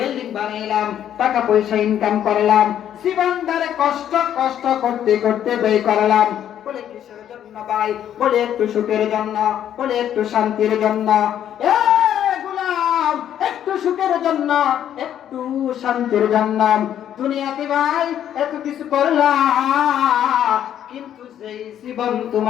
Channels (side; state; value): right; quieter; 10.3 dB